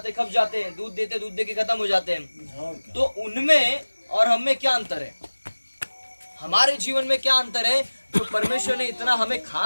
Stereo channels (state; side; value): inverted; both; correlation -1.00